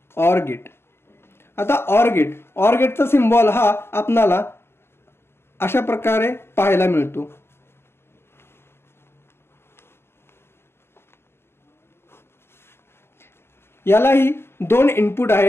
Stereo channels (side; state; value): right; late; 0.12 ms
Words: Or gate. आता ऑर गेटचा सिम्बॉल हा आपल्याला अशा प्रकारे पाहायला मिळतो। यालाही दोन इनपुट